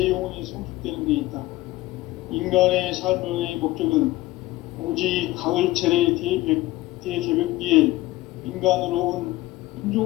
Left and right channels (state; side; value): quieter; right; 18.1 dB